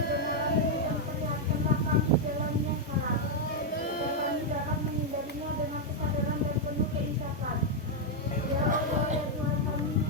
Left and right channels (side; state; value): both; normal; correlation -0.01